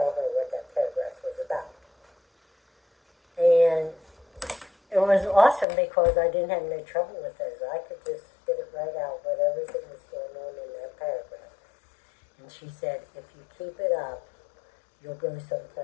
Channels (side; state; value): right; drops out; at 5.7 s